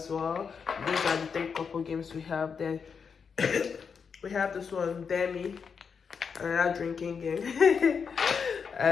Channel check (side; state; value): right; quieter; 6.1 dB